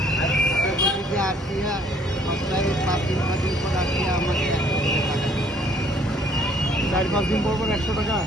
চার পাঁচ দিন পর 100 টাকা?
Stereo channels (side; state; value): both; normal; correlation 0.61